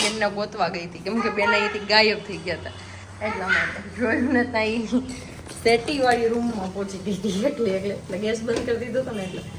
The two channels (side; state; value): both; identical; correlation 1.00